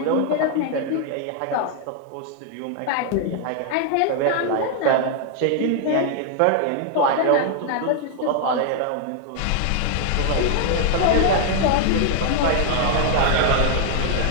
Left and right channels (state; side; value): different; both; correlation 0.00